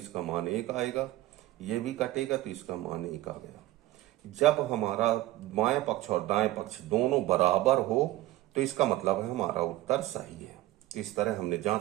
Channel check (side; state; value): left; quieter; 16.5 dB